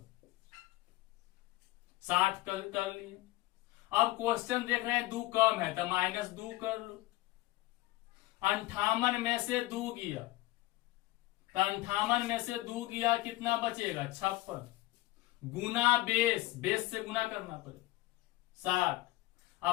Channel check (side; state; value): right; quieter; 18.8 dB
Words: 60 कर लिए। अब क्वेश्चन देख रहे हैं 2 कम है, तो -2 कर लो। 58 में से 2 गया, तो 58 में से 2 गया, कितना बचेगा? 56 गुना बेस से गुना करना पड़ेगा 60।